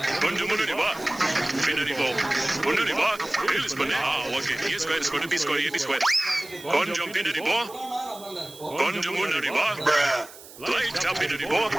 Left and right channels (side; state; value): right; noise; hiss, 18 dB below the sound